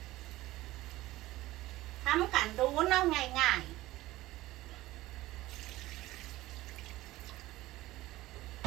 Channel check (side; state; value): left; quieter; 17.3 dB